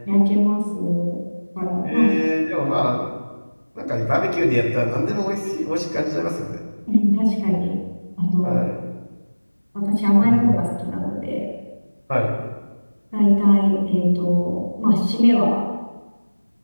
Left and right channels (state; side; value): inverted; both; correlation -1.00